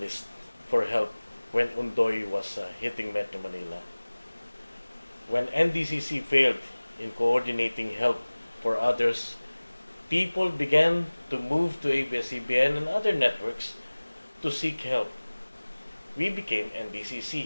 for help when Undoy was hitting Metro Manila. When NDCC failed in coordinating help for others, people began to move to ABS-CBN and other networks to seek help. We became NDCC.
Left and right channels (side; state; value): both; inverted; correlation -1.00